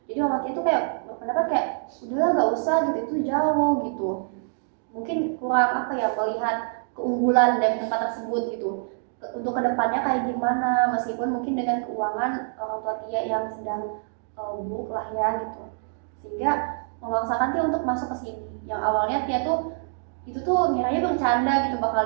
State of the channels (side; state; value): left; silent; digital silence